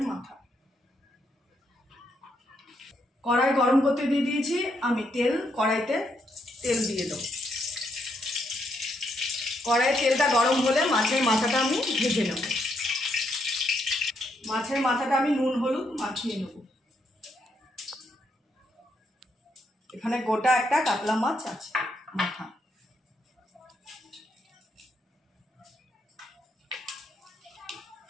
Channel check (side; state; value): both; normal; correlation 0.77